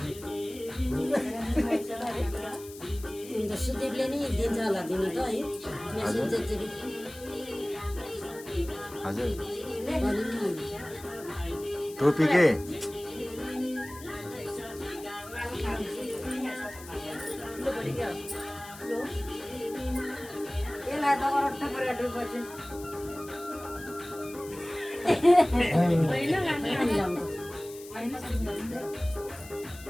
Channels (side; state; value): left; noise; hiss, 17 dB below the sound